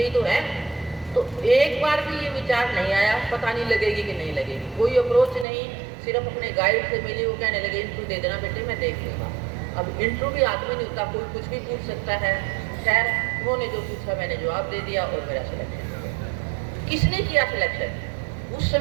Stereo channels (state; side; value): drops out; left; at 5.5 s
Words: ही तो है। तो एक बार भी ये विचार नहीं आया पता नहीं लगेगी कि नहीं लगेगी, कोई अप्रोच नहीं, सिर्फ अपने गाइड से मिली, वो कहने लगे इंटरव्यू दे देना बेटे मैं देख लूँगा। अब इंटरव्यू भी हाथ में नहीं होता, कोई कुछ भी पूछ सकता है। खैर उन्होंने जो पूछा मैंने जवाब दे दिया और मेरा सिलेक्शन हो गया। किसने किया सिलेक्शन? उस